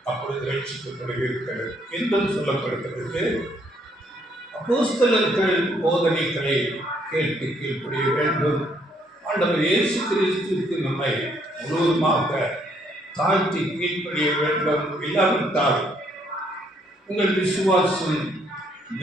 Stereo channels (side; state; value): both; normal; correlation 0.69